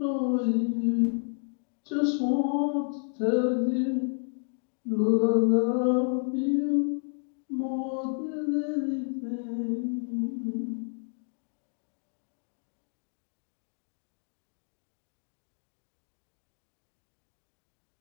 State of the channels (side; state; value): right; silent; 57 dB below the other